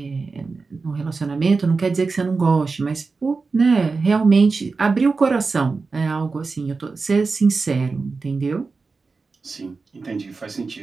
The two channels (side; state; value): left; quieter; 4.3 dB